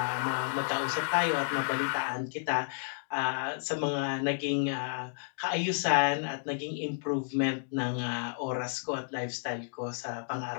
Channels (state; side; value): silent; right; digital silence